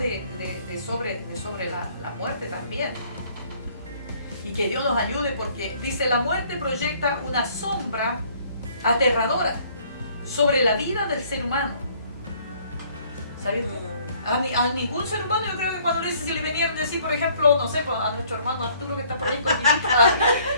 sobre la muerte también. Y que Dios nos ayude, porque dice, la muerte proyecta una sombra aterradora sobre la vida del ser humano. ¿Sabes? A ningún ser humano, yo creo que cuando le dice, si le venían a decir, por ejemplo, no sé, pues, a nuestro hermano Arturo que está por ahí con mi hija,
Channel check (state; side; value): inverted; both; correlation -0.60